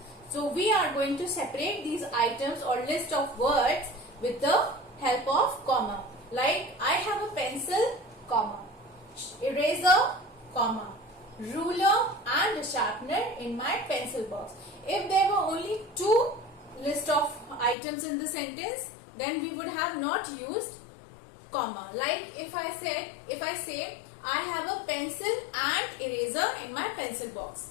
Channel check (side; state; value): right; drops out; at 17.8 s